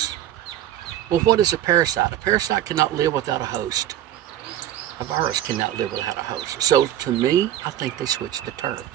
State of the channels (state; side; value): quieter; left; 12.2 dB